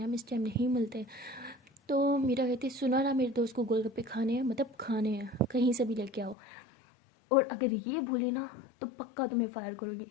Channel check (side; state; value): right; drops out; at 6.4 s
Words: इस टाइम नहीं मिलते। तो मेरा कहती सुना ना मेरे दोस्त को गोलगप्पे खाने हैं, मतलब खाने हैं, कहीं से भी लेके आओ, और अगर ये भूली ना तो पक्का तुम्हें फायर करूँगी।